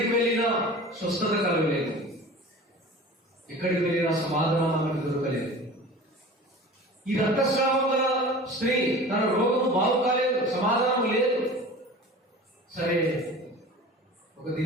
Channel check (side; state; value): both; normal; correlation 0.39